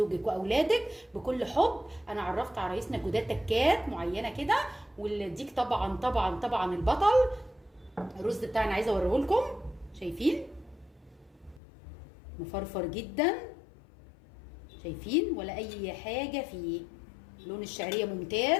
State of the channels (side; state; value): right; drops out; at 11.6 s